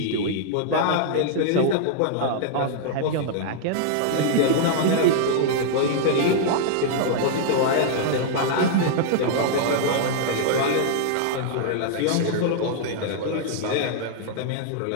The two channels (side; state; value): both; different; correlation -0.01